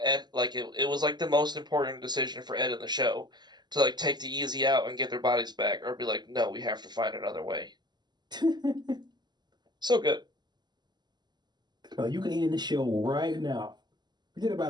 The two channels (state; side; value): late; left; 0.21 ms